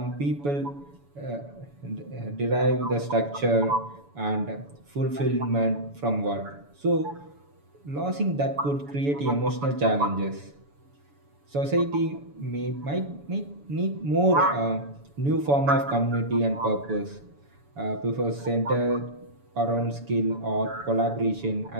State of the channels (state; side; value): late; left; 7.0 ms